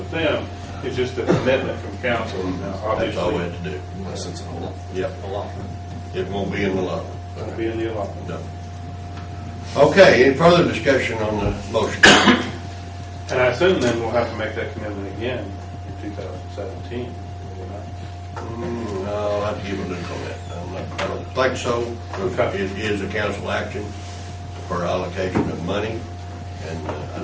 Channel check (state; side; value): identical; both; correlation 1.00